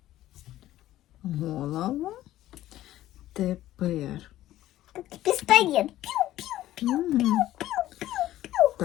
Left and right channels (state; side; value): quieter; right; 14.2 dB